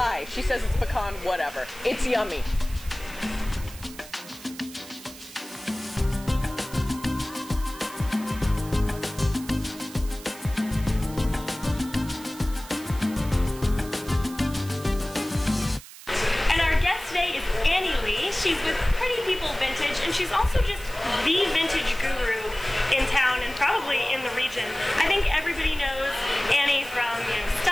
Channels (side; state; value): right; noise; hiss, 16 dB below the sound